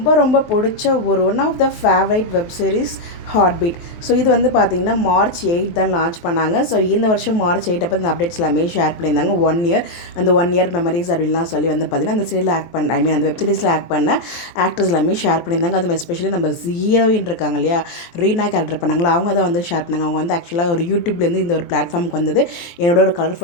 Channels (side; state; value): right; late; 23 ms